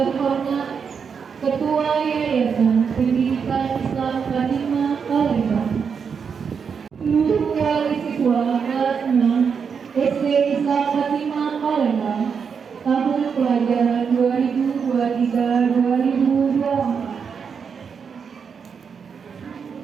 Ketua Yayasan Pendidikan Islam Fatima Palembang, seluruh wali siswa kelas 6 SD Islam Fatima Palembang tahun pelajaran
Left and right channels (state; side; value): quieter; left; 6.3 dB